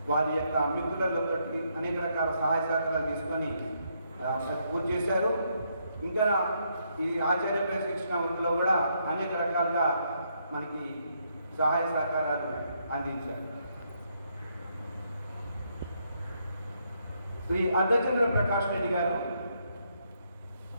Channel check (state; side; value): inverted; both; correlation -0.76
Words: వారి యొక్క మిత్రులతో అనేక రకాల సహాయ సహకారాలు తీసుకొని పూర్తి చేశారు. ఇంకా ఈ ఆచార్య శిక్షణ వృత్తిలో కూడా అనేక రకాలుగా మనకి సహాయ సహకారాలు అందించారు. శ్రీ అర్ధచంద్ర ప్రకాష్ రెడ్డి గారు,